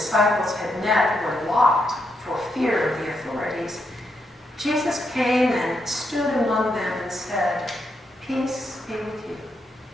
had met were locked for fear of the authorities, Jesus came and stood among them and said, peace be with you.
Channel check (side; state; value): both; normal; correlation 0.81